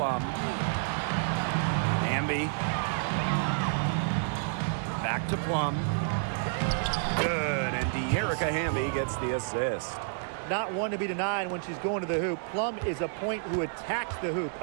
Hamby. Back to Plum. Good. And De'Erica Hamby gets the assist. Not one to be denied when she's going to the hoop. Plum is a point who attacks the hoop.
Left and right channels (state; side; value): silent; left; digital silence